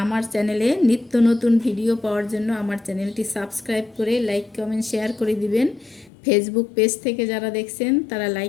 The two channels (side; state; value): right; drops out; at 6.1 s